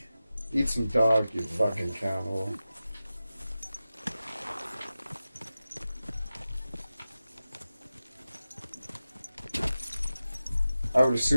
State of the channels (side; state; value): both; inverted; correlation -0.94